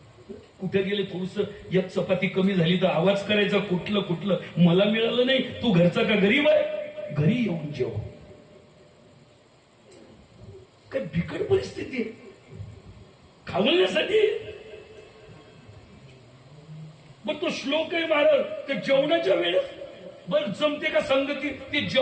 कुठे गेले थोडस एक चपाती कमी झाली तर आवाज करायचा, कुठलं मला मिळालं नाही, तू घरचा का गरीब आहे, घरी येऊन जेव. काय बिकट परिस्थिती आहे खावण्यासाठी. मग तो श्लोक आहे महाराज, तर जेवणाच्या वेळेस बर जमते का संगती? ते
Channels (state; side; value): identical; both; correlation 1.00